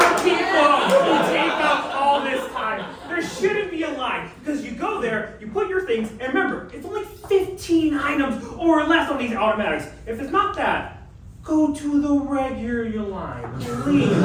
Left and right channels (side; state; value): both; identical; correlation 1.00